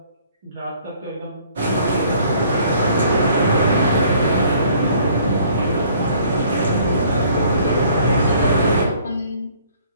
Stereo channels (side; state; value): both; inverted; correlation -0.58